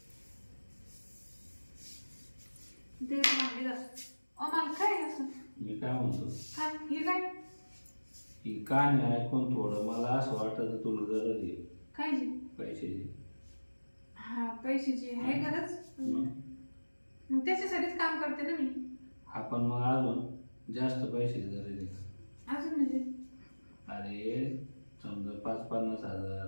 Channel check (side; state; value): both; inverted; correlation -1.00